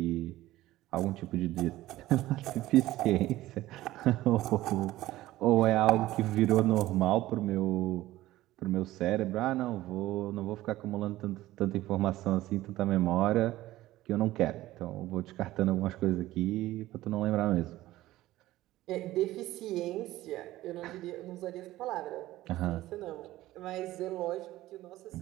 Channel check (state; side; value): quieter; left; 16.1 dB